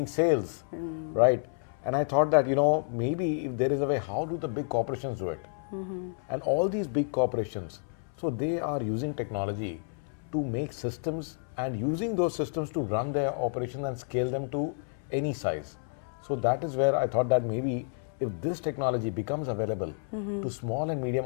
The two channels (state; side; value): silent; right; 58 dB below the other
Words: sales, right? And I thought that, you know, maybe if there is a way, how do the big corporations do it? And all these big corporations, so they are using technology to make systems and using those systems to run their operations and scale them to any size. So that is where I thought that maybe if this technology becomes available to small and medium